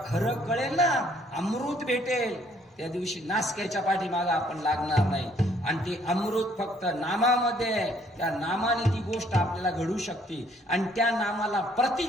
खरं कळेल ना, अमृत भेटेल, त्या दिवशी नासक्याच्या पाठीमागे आपण लागणार नाही. आणि ते अमृत फक्त नामामध्ये आहे. त्या नामाने ती गोष्ट आपल्याला घडू शकते. आणि त्या नामाला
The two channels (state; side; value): normal; both; correlation 0.64